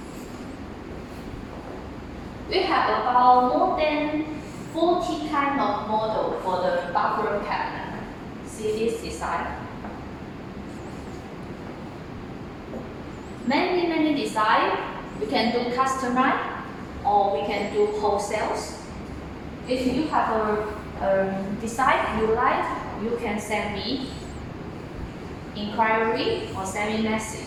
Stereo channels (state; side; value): identical; both; correlation 1.00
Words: We have about more than 40 kind of model for the bathroom cabinet. See this design? Many design. We can do customize or we can do wholesales. If you have a design you like, you can send me inquiry or send me